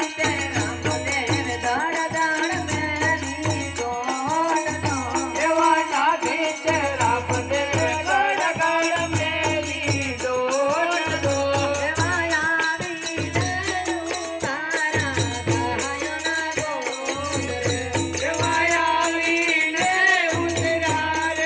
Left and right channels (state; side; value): identical; both; correlation 1.00